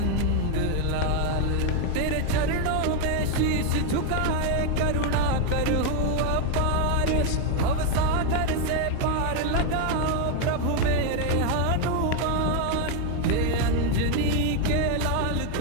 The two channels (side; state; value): both; different; correlation 0.01